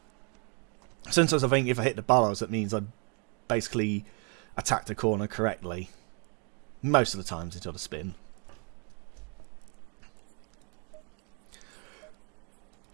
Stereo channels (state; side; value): quieter; left; 36.9 dB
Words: Sometimes I think if I hit the bollards, that means I basically attacked the corner correctly. Most of the times it's on a spin.